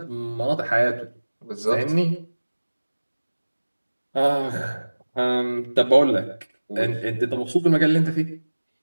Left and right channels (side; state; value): both; inverted; correlation -1.00